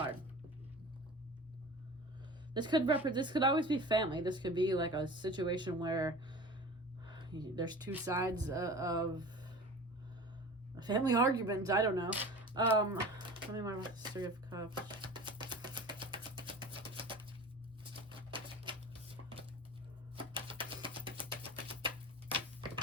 This could always be family. This could be like a situation where there's 2 sides of a family argument. I don't know. Tell me more about this Three of Cups.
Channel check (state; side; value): normal; both; correlation 0.37